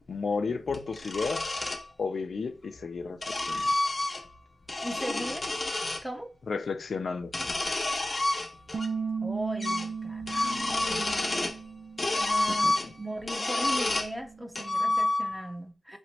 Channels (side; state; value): both; normal; correlation 0.95